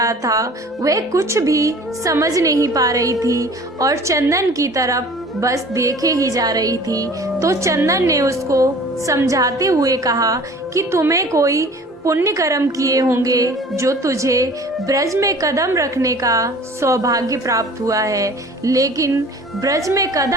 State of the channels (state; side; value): normal; both; correlation 0.46